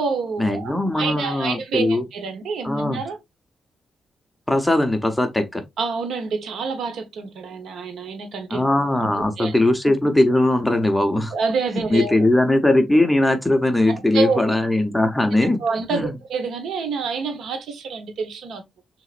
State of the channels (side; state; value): both; normal; correlation 0.89